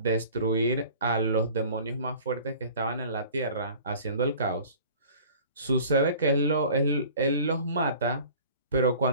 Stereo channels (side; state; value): both; inverted; correlation -0.46